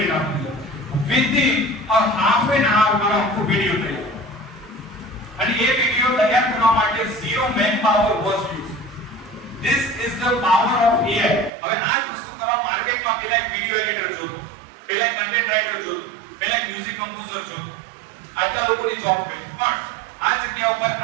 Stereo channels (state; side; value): drops out; left; at 11.5 s